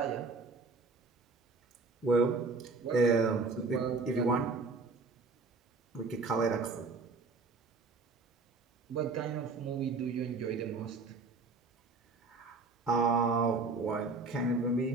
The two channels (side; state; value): left; quieter; 3.9 dB